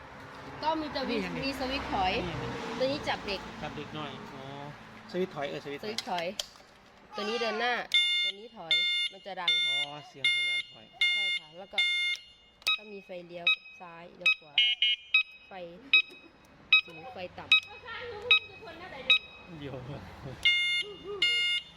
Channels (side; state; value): both; identical; correlation 1.00